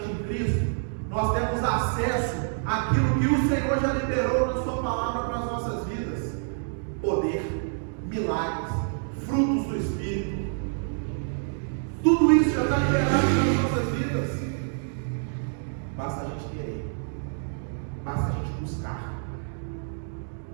em Cristo, nós temos acesso àquilo que o Senhor já liberou na sua palavra para as nossas vidas: poder, milagres, frutos do Espírito. Tudo isso já está liberado nas nossas vidas. Basta a gente querer, basta a gente buscar,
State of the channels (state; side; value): silent; left; digital silence